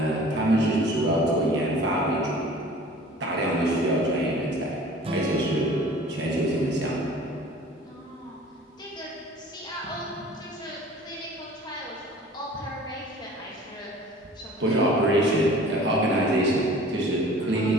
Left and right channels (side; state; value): both; normal; correlation 0.46